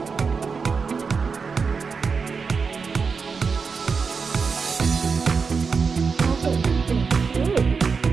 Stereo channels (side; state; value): left; quieter; 5.2 dB